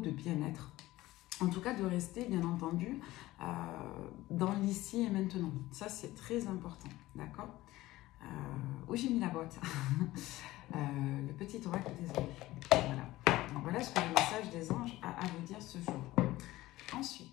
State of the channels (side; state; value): right; quieter; 17.3 dB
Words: bien-être. En tout cas, de rester, bien entendu, dans l'ici et maintenant. Ça, c'est très important, d'accord? Où j'ai mis la boîte? Le petit oracle des anges. Voilà. Donc, voilà ce que le message des anges a à vous dire ce jour.